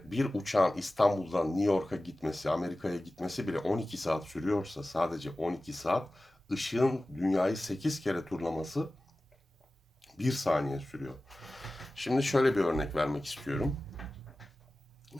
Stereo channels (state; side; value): normal; both; correlation 0.96